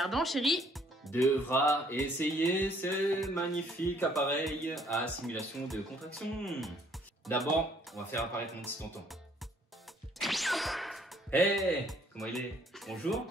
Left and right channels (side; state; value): both; normal; correlation 0.63